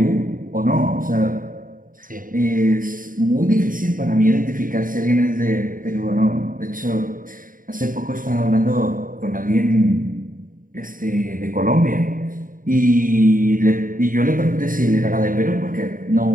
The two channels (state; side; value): late; left; 0.40 ms